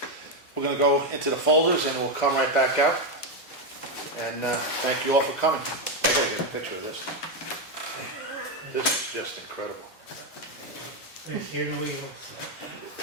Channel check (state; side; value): normal; both; correlation 0.06